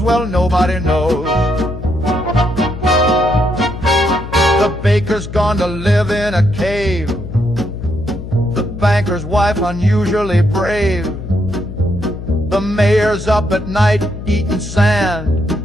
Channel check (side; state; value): left; noise; hum, 10 dB below the sound